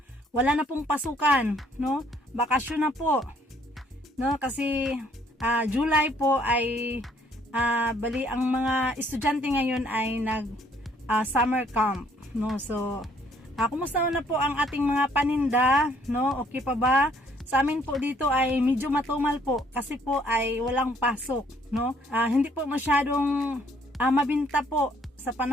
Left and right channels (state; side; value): normal; both; correlation 0.64